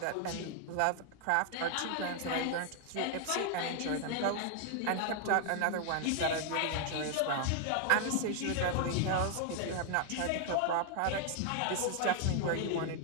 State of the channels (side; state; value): both; different; correlation 0.00